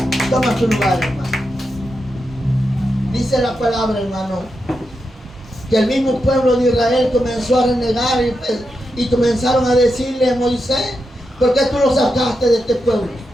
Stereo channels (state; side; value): normal; both; correlation 0.87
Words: Toma tu lugar, hermano. Dice la palabra, hermano, que el mismo pueblo de Israel comenzó a renegar y comenzaron a decirle a Moisés: ¿por qué tú lo sacaste de este pueblo?